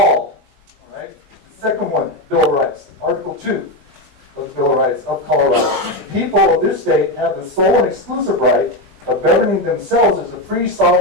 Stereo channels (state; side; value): late; left; 19 ms